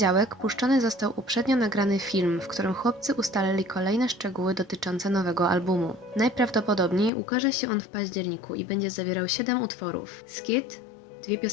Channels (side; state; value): right; drops out; at 7.1 s